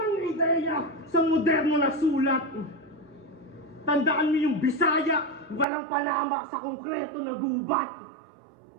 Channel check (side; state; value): left; drops out; at 5.7 s